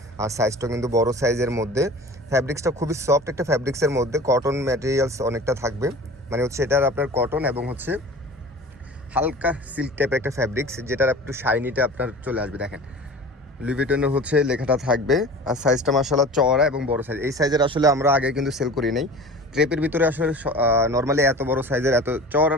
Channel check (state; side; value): normal; both; correlation 0.39